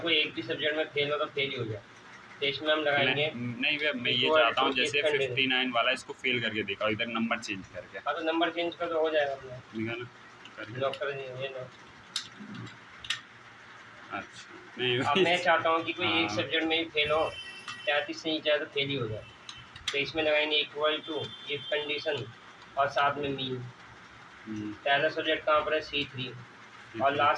कोई एक भी सब्जेक्ट में फेल हो तो फेल ही हो जाए, तो इसमें हम लगाएंगे नहीं भैया, मैं ये चाहता हूँ जैसे 59 वाला इसको फेल करके देखा, इधर नंबर चेंज करके। हाँ, तो नंबर चेंज कर तो हो जाएगा अपना, लॉक कर दीजिए। अच्छा, नहीं अब मैं चाहता हूँ कि कोई एक सब्जेक्ट में ही फेल हो, 33 से नीचे तो फेल ही हो जाए, तो इसमें लगाएंगे इक्वल टू इफ कंडीशन और साथ में मीन। पहला सब्जेक्ट कहाँ पर है? C3 और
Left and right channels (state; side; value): identical; both; correlation 1.00